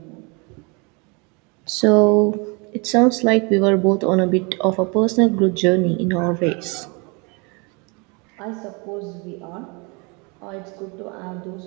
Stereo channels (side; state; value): left; quieter; 30.6 dB